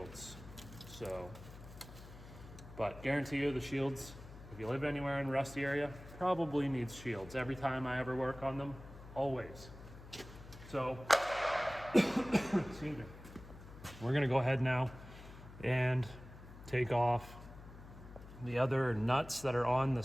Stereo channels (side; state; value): left; noise; hum, 16 dB below the sound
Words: So, but guarantee you the shields, if you live anywhere in a rusty area, probably needs shields. Every time I ever work on them, always. So, excuse me. We're going to go ahead now and take off the other nuts that are on the